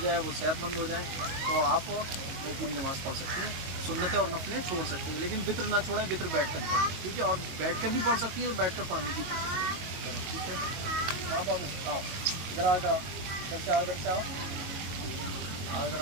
वो सेहतमंद हो जाएँ तो आप वो पूरी नमाज़ पढ़ सकती हैं, सुन्नतें और नफलें छोड़ सकती हैं, लेकिन वित्र ना छोड़ें, वित्र बैठ कर पढ़ें, ठीक है। और बैठ कर भी पढ़ सकती हैं तो बैठ कर पढ़ने की कोशिश करें, ठीक है। हाँ बाबू आओ, इधर आओ, इधर से आओ, इधर से आओ, आओ इधर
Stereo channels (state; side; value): late; left; 22 ms